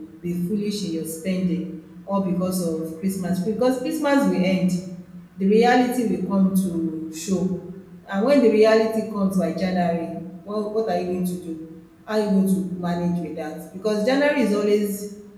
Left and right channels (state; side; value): identical; both; correlation 1.00